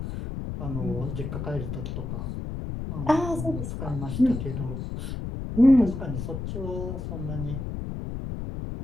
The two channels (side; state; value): left; noise; rumble, 5 dB below the sound